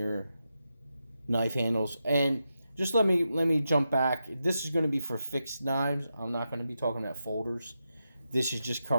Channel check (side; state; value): both; inverted; correlation -0.88